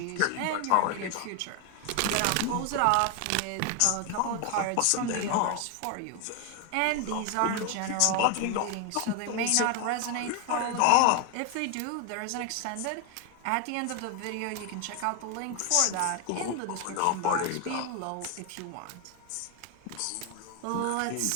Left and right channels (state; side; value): different; both; correlation 0.01